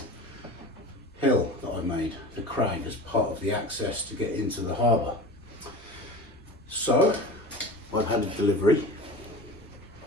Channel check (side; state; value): both; normal; correlation 0.35